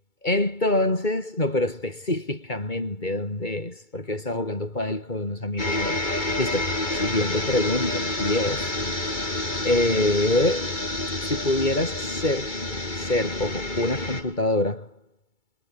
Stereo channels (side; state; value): right; late; 2.3 ms